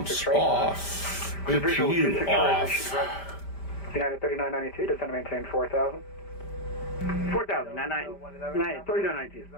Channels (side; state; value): right; late; 5.1 ms